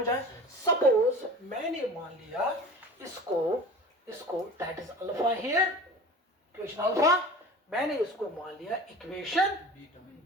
आया? सपोज मैंने मान लिया इसको that is alpha here, equation alpha. मैंने इसको मान लिया इक्वेशन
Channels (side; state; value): both; normal; correlation 0.38